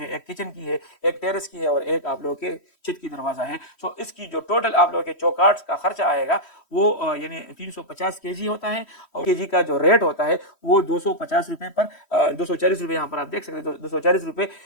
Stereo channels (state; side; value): late; right; 3.1 ms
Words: एक किचन की है, एक टेरेस की है और एक आप लोगों के छत की दरवाजा है। इसकी जो टोटल आप लोगों के चौकाट का खर्चा आएगा वो यानी 350 केजी होता है और केजी का जो रेट होता है वो 250 रुपए पर 240 रुपए यहाँ पर आप देख सकते हैं, 240 रुपए